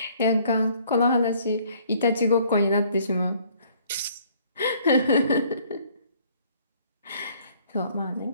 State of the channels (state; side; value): inverted; both; correlation -0.59